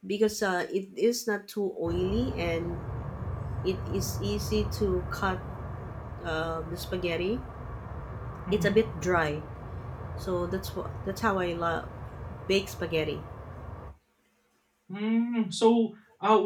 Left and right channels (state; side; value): identical; both; correlation 1.00